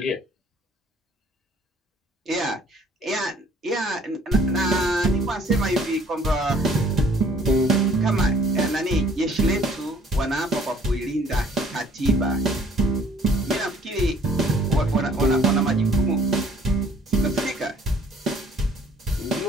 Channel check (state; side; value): normal; both; correlation 0.57